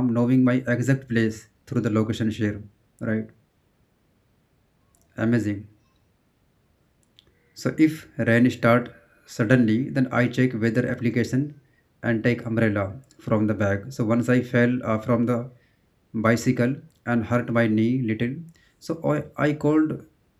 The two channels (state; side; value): identical; both; correlation 1.00